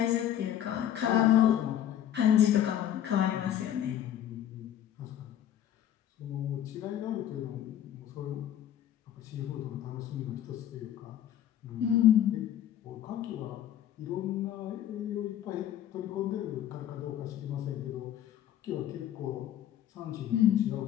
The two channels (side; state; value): right; quieter; 11.0 dB